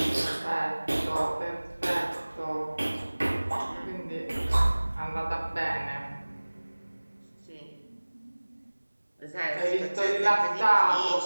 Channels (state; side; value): inverted; both; correlation -1.00